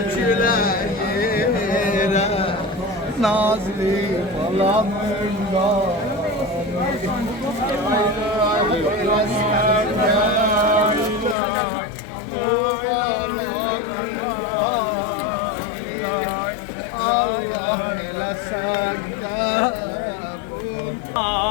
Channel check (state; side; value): drops out; right; at 11.4 s